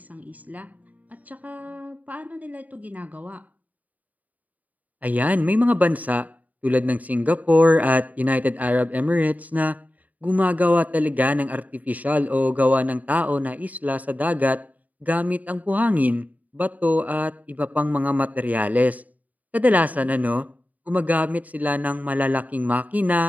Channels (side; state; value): left; late; 0.075 ms